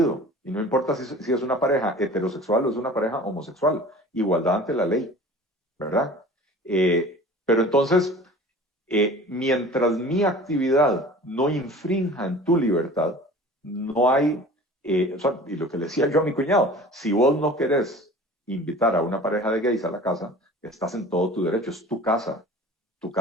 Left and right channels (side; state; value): both; normal; correlation 0.42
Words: Y no importa si es una pareja heterosexual o es una pareja homosexual. Igualdad ante la ley, ¿verdad? Pero entonces, mientras mi actividad no infrinja en tu libertad, no hay, o sea, y lo que le decía yo a mi cuñado, si vos no querés invitar a una pareja de gays a la casa, estás en todo tu derecho, es tu casa